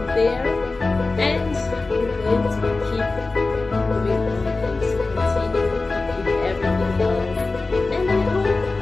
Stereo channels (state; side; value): quieter; right; 3.5 dB